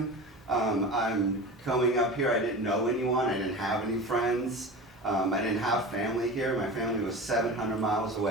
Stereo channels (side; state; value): both; normal; correlation 0.32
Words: I'm coming up here, I didn't know anyone, I didn't have any friends. I didn't have family here. My family was 700 miles